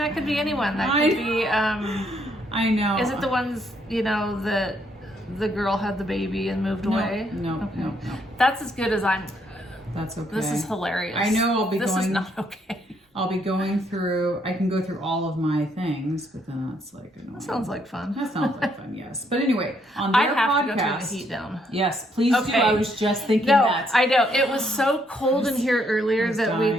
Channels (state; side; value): normal; both; correlation 0.72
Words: could be anyone. That could be... I know. Is it the ones, that the girl had the baby and moved away? No, Okay. no. That's as good as I'm... That's okay. This is hilarious. I know I'll be This is not okay. I'll be going through... I can go through all of my things, but then that's like annoying. That sounds like fun. That sounds like fun, yes. But anyway, on their I have podcast... to go turn the heat down. Yes, please do. Okay. I was just thinking No, that. I know. It was so cold in here earlier that